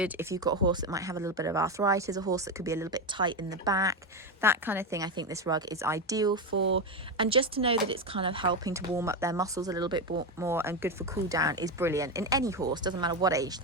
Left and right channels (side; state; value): both; normal; correlation 0.13